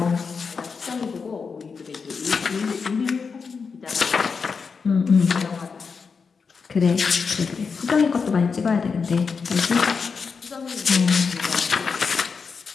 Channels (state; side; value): quieter; right; 5.3 dB